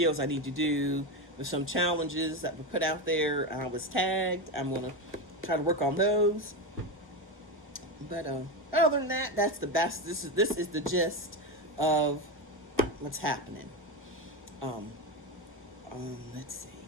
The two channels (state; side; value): normal; both; correlation 0.15